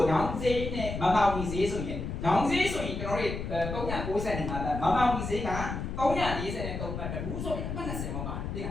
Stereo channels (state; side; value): noise; left; rumble, 5 dB below the sound